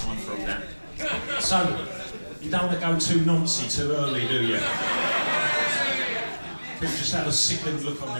for all that. So, you don't want to go too noncy too early, do you? People just have a sickened look on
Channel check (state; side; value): inverted; both; correlation -1.00